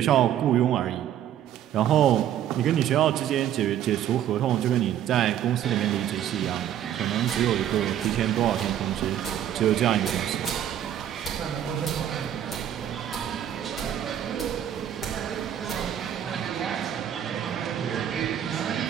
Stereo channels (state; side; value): quieter; left; 10.7 dB